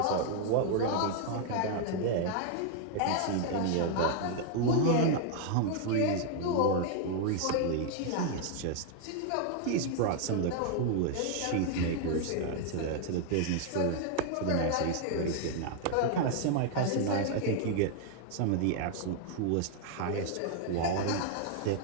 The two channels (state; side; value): different; both; correlation 0.00